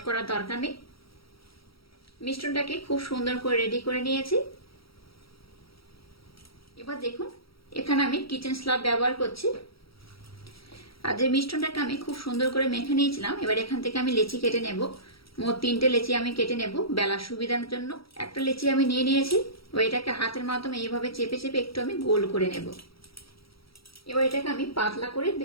করার দরকার নেই। মিশ্রণটাকে খুব সুন্দর করে রেডি করে নিয়েছি। এবার দেখুন এখানে আমি কিচেন স্ল্যাব ব্যবহার করছি। আর যে মিশ্রণটাকে আমি খুব সুন্দর করে মেখে নিয়েছিলাম, এবার এখান থেকে আমি লেচি কেটে নেব। মোট 3টে লেচি আমি কেটে নেব বেলার সুবিধার জন্য। একটা লেচি আমি নিয়ে নিয়েছি, এবার এটাকে হাতের মাধ্যমে এইভাবে চেপে চেপে একটু আমি গোল করে নেব। এবার এটাকে আমি পাতলা করে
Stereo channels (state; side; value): late; right; 0.75 ms